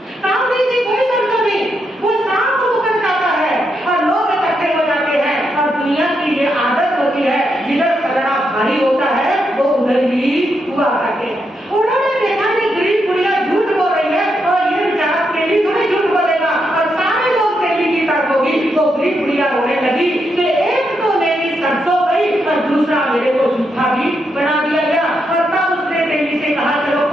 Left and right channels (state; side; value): normal; both; correlation 0.81